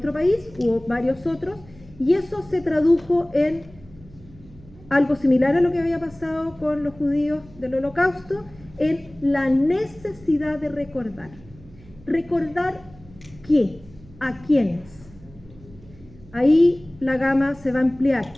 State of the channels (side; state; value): right; noise; hum, 22 dB below the sound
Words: país, hubo varios otros, y eso se tradujo en algo similar a lo que había pasado con los judíos del holocausto, en la necesidad de recordar. ¿Recordar qué? ¿A quiénes? Ahí la gama se va a ampliar,